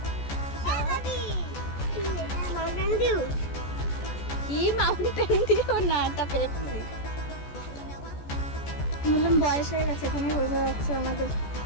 কি মাউন্টেন ডিউ না, এটা পেপসি। বললাম বয়স হয়ে গেছে, তুমি বোঝা যাচ্ছে আমাদের।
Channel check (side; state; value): right; late; 14 ms